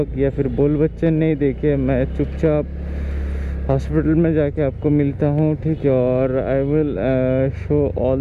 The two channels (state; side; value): identical; both; correlation 1.00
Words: या फिर बोल बच्चे नहीं देखे, मैं चुपचाप हॉस्पिटल में जाके आपको मिलता हूँ, ठीक है। और I will show